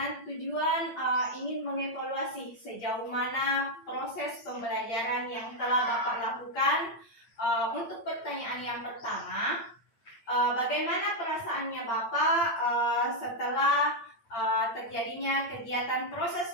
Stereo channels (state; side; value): late; right; 8.7 ms